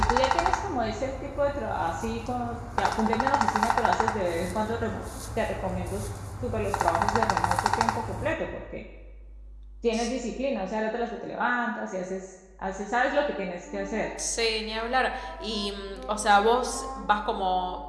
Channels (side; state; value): both; identical; correlation 1.00